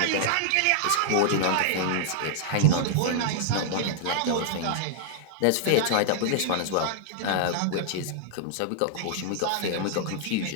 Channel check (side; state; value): both; different; correlation -0.01